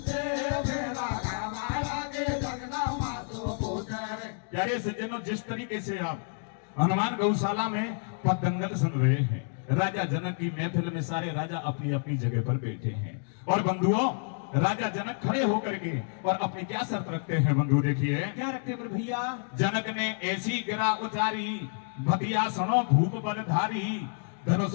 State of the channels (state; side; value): silent; right; 58 dB below the other